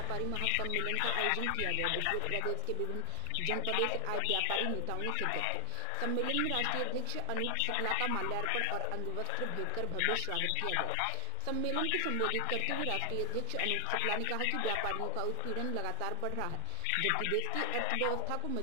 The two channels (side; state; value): both; different; correlation 0.00